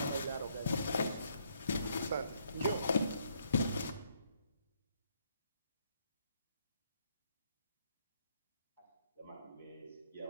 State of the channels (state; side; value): inverted; both; correlation -0.71